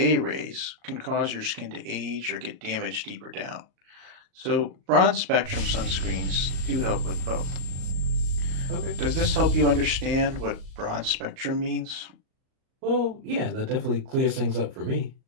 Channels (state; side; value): late; left; 38 ms